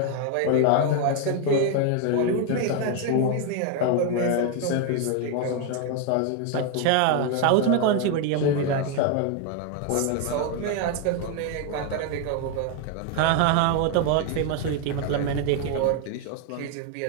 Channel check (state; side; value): different; both; correlation 0.01